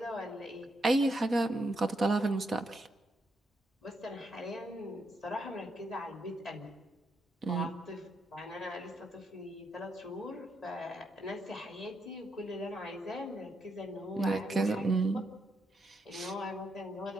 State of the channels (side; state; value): both; normal; correlation 0.79